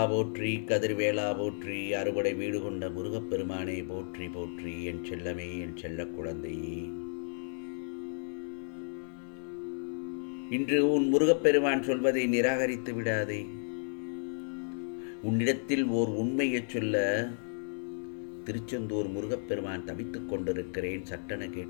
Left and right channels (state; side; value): silent; right; 55 dB below the other